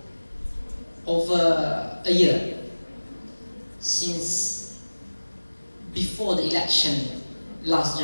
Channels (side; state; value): both; inverted; correlation -1.00